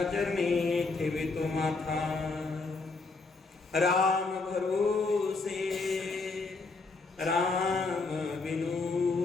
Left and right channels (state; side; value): quieter; right; 3.9 dB